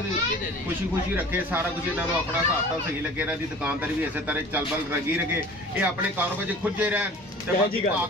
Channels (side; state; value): both; normal; correlation 0.44